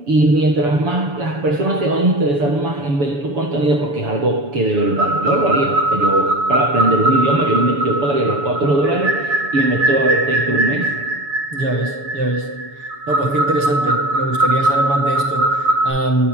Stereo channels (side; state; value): left; late; 7.0 ms